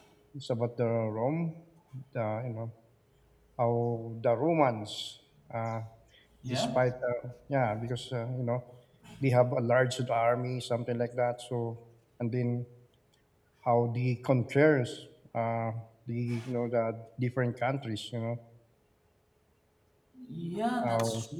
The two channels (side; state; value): both; identical; correlation 1.00